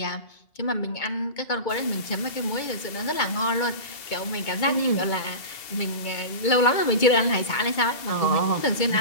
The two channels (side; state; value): right; late; 2.2 ms